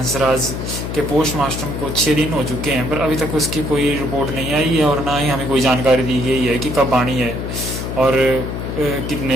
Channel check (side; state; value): left; noise; hum, 5 dB below the sound